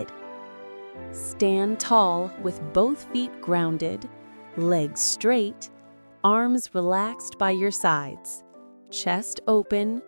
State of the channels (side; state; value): both; inverted; correlation -1.00